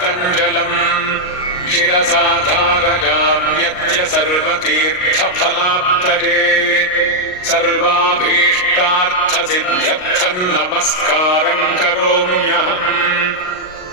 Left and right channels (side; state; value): right; late; 38 ms